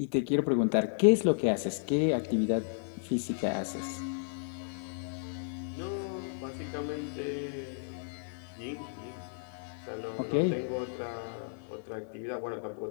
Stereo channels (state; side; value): silent; right; 56 dB below the other